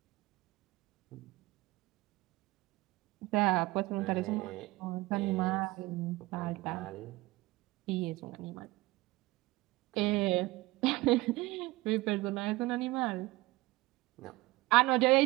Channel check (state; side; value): quieter; left; 20.6 dB